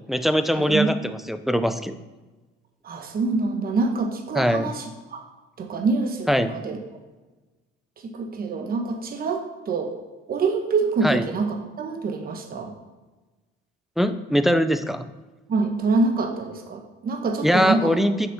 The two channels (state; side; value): normal; both; correlation 0.73